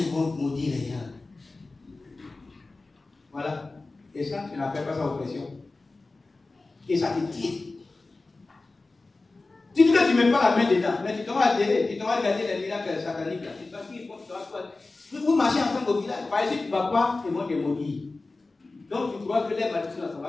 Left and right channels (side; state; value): right; quieter; 3.4 dB